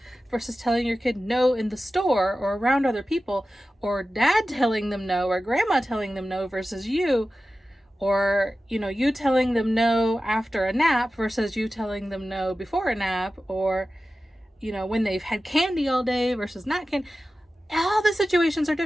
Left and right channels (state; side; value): normal; both; correlation 0.94